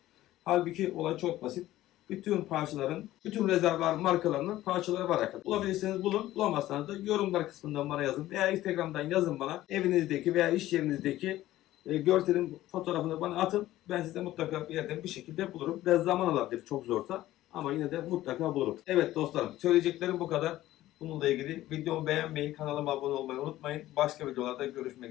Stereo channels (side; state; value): right; quieter; 15.1 dB